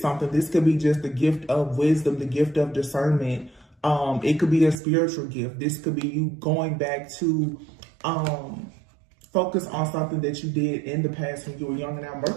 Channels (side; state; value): left; drops out; at 4.8 s